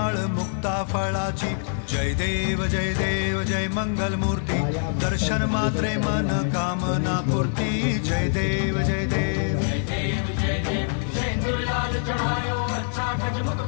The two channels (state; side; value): silent; right; 62 dB below the other